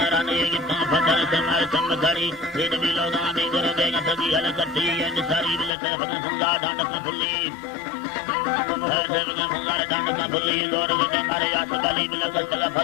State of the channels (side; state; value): right; drops out; at 5.7 s